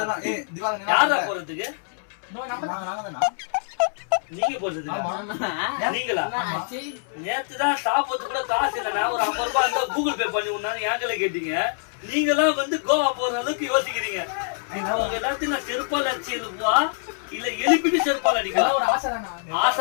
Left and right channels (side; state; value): right; silent; 62 dB below the other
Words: யாரா போறதுக்கு? நீங்க போறது நீங்களா? நேத்துதான் சாப்பிட்டு கூட காசு இல்ல. நான் ஒரு 50 ரூபாய் இருந்தா கூகுள் பே பண்ணி விடணும் ஏங்கல கேட்டீங்க. நீங்க எல்லாம் வந்து கோவா போற அளவுக்கு யோசிக்கிறீங்க. உங்க எல்லாத்தையும் நான் செருப்பால் அடிச்சு எழுப்பா இல்ல எழுப்பிட்டு செருப்பால் அடிக்கலாம். ஆசை